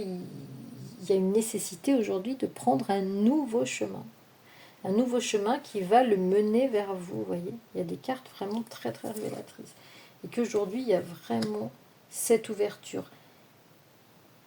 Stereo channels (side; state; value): both; identical; correlation 1.00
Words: y a une nécessité aujourd'hui de prendre un nouveau chemin qui va le mener vers vous. Vous voyez, il y a des cartes vraiment très très révélatrices, et qu'aujourd'hui il y a vraiment cette ouverture.